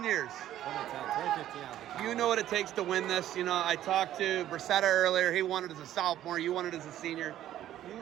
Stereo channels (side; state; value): left; quieter; 12.5 dB